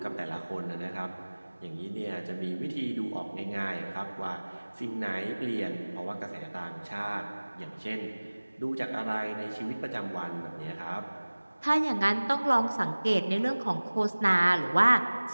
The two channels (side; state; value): both; inverted; correlation -1.00